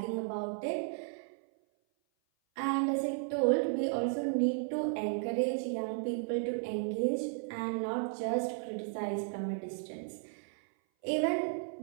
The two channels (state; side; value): silent; left; 55 dB below the other